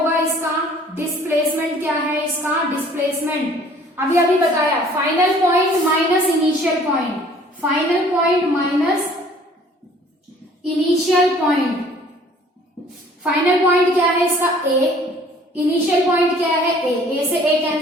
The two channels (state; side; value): normal; both; correlation 0.54